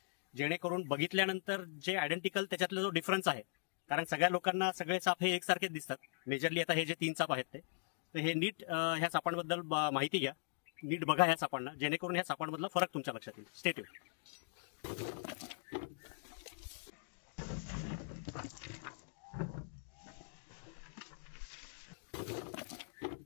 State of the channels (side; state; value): right; silent; digital silence